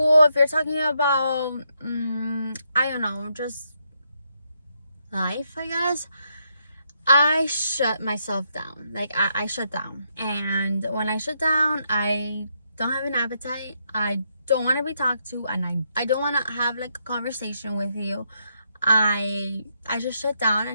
if you're talking about I don't know, just life, I guess, I shut myself down. Like, I shut down. And when I shut down, I don't have an appetite. I don't want to be talked to, and I don't want to have like a conversation with you. I just shut down,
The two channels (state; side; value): inverted; both; correlation -0.78